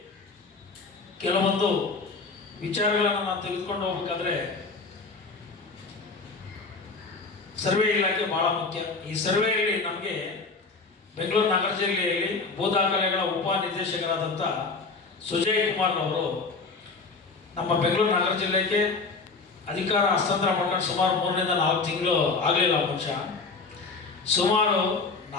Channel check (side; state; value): right; quieter; 4.1 dB